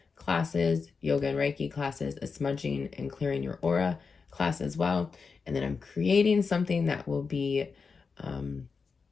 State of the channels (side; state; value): right; quieter; 5.0 dB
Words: classes, yoga and Reiki classes, a smudging and clearing your aura class as well. And then I'm creating something that will be